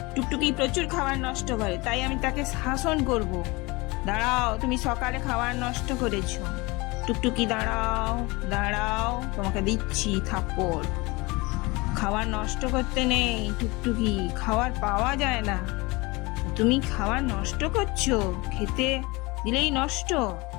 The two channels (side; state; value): right; quieter; 24.2 dB